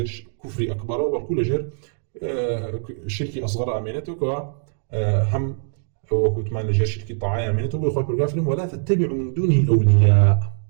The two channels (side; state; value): left; silent; digital silence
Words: کوفری ئەکبەرەوە، بەڵکو لە ژێر شرکی ئەصغەر ئامێنێتەوە هەم وەکو وتمان لە ژێر شرکی طاعەیە ئامێنێتەوە. بۆی خۆی پەروەردگار فەرمێ وەلا تتبعوا من دونه ئەولیا،